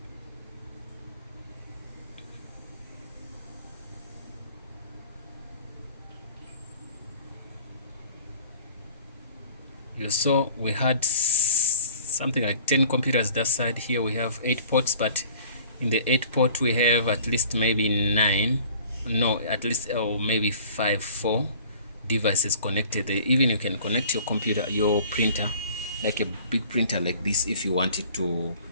you saw we had something like 10 computers that side. Here we have 8 ports, but in the 8 port we have at least maybe 9, no, at least maybe 4 devices connected. Even you can connect your computer, your printer, like a big printer like this, if you want it to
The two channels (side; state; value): both; inverted; correlation -0.49